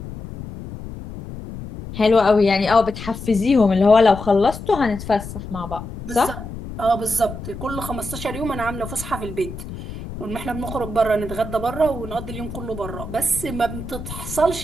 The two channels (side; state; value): left; noise; rumble, 10 dB below the sound